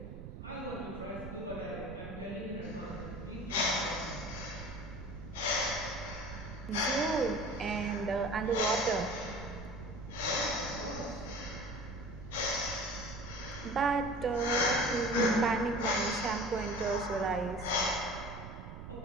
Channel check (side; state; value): right; noise; rumble, 11 dB below the sound